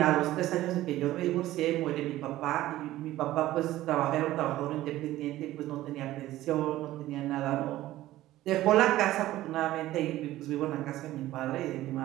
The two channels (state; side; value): quieter; left; 15.4 dB